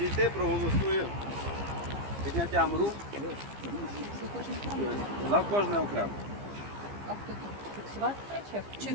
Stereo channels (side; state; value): left; late; 15 ms